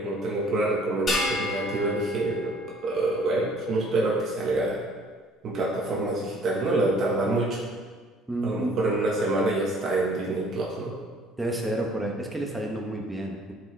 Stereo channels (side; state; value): both; normal; correlation 0.56